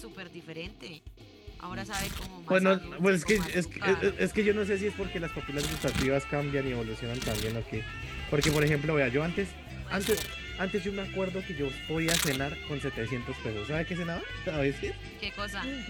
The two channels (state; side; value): identical; both; correlation 1.00